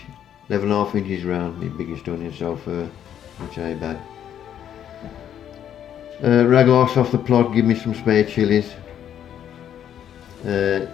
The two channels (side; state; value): right; quieter; 9.9 dB